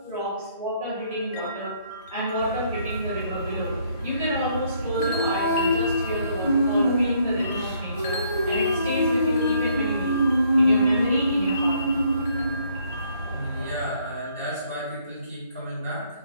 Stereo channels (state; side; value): inverted; both; correlation -0.67